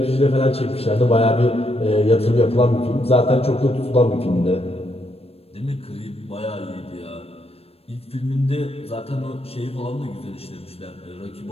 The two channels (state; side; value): late; right; 0.28 ms